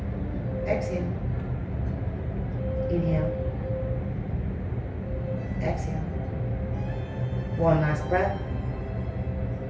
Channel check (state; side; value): identical; both; correlation 1.00